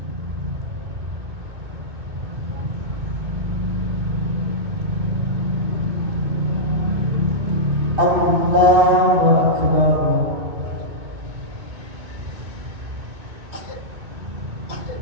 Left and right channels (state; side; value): late; left; 2.4 ms